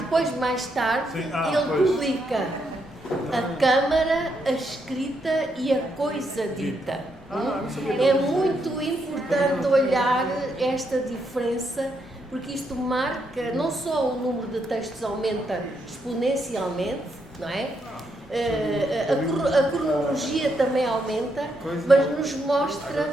mais tarde, ele publica a Câmara, a Escrita e a Coisa Dita. É muito importante olhar esta diferença, porque isto marca, não só o número de textos aumenta exponencialmente, não é? A cronologia também aumenta, mas nos mostra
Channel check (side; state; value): both; normal; correlation 0.78